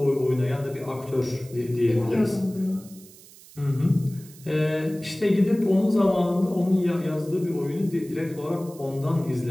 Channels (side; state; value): right; noise; hiss, 22 dB below the sound